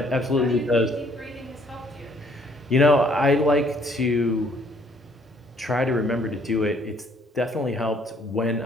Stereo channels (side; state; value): both; normal; correlation 0.63